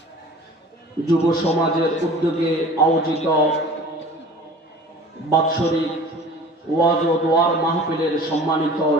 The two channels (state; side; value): normal; both; correlation 0.43